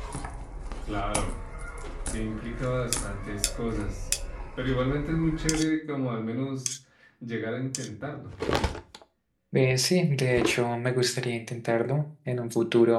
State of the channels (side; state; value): both; identical; correlation 1.00